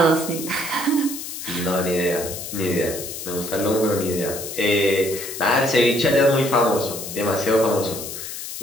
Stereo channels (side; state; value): left; noise; hiss, 8 dB below the sound